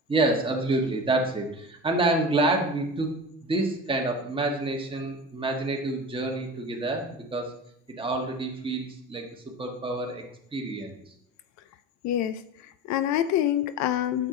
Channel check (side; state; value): both; normal; correlation 0.31